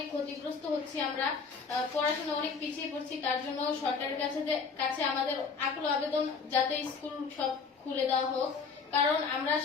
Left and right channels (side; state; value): right; quieter; 5.2 dB